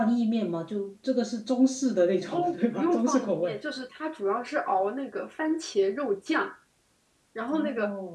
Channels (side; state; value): both; identical; correlation 1.00